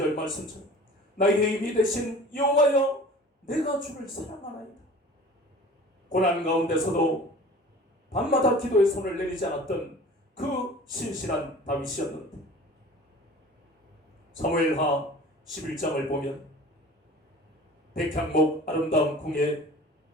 말씀처럼 나의 힘이 되신 여호와여 내가 주를 사랑하나이다. 고난 가운데서도 밤마다 기도의 손을 내리지 않았던 그 신실한 다윗이었는데 사무엘하 11장을 보면 백향목 아름다운 궁에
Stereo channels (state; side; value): normal; both; correlation 0.43